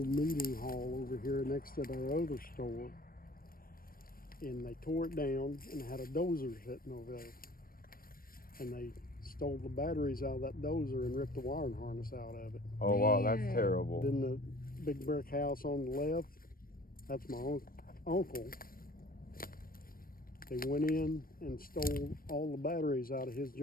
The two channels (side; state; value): right; late; 0.42 ms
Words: meeting hall over here next to their other store. And they tore it down and had a dozer sitting over there. And they stole the batteries out of that dozer and ripped the wiring harness out of it. Oh, wow, that's Man. terrible. Then the big brick house on the left, that's my uncle. They went in and stole all the batteries out of his